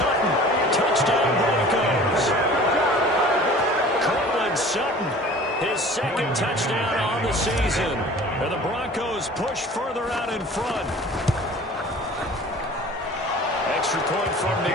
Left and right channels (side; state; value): both; normal; correlation 0.45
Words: Touchdown Broncos. Sutton, his 2nd touchdown on the season. And the Broncos push further out in front. Extra point from